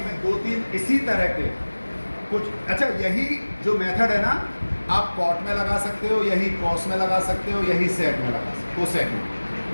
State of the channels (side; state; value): both; inverted; correlation -1.00